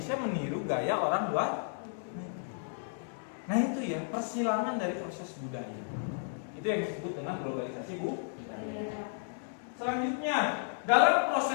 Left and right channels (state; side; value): silent; right; digital silence